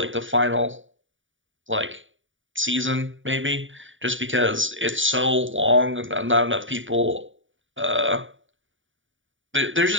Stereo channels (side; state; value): left; late; 0.56 ms